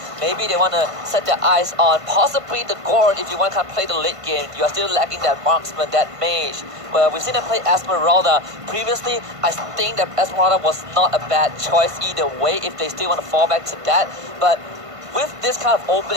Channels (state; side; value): late; left; 1.5 ms